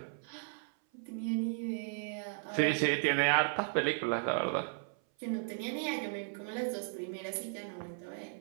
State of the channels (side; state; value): left; silent; 54 dB below the other